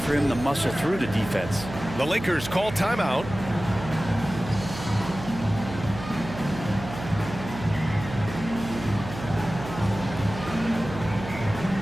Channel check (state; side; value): noise; right; hum, 11 dB below the sound